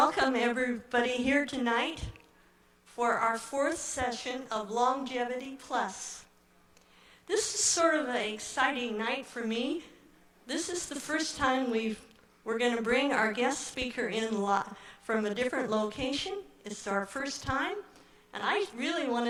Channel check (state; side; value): identical; both; correlation 1.00